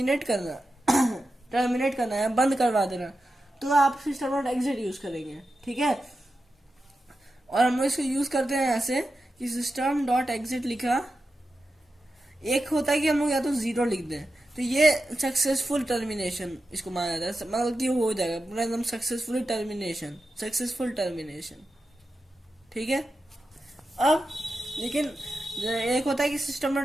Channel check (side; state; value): both; normal; correlation 0.91